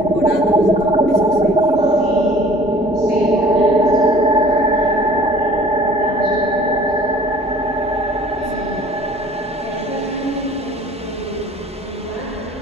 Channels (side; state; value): both; normal; correlation 0.49